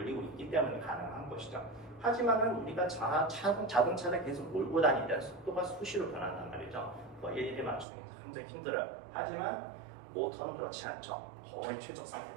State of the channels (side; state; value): left; drops out; at 7.9 s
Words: 있기 때문에 가능한 것이죠. 하지만은 우리가 자동차를 계속 몰고 다니는 속도가 수시로 변한단 말이죠. 일일이 맞추기 굉장히 힘들어요. 하지만 모터는 그렇지 않죠. 거의 최적